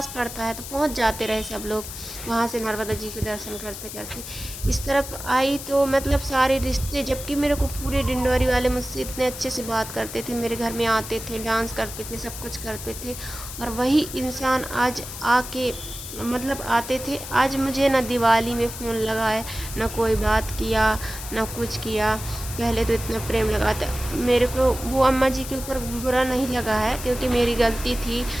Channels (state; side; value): noise; left; hiss, 10 dB below the sound